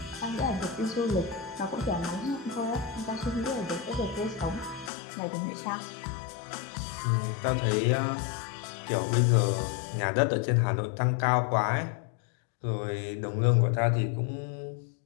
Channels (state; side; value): drops out; right; at 4.9 s